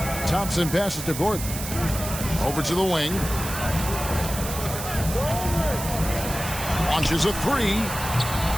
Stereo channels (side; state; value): right; noise; hiss, 8 dB below the sound